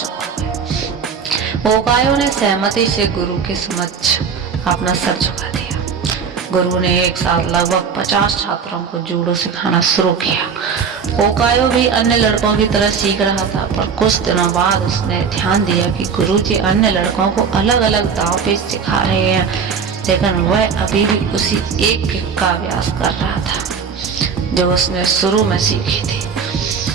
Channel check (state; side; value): quieter; left; 6.1 dB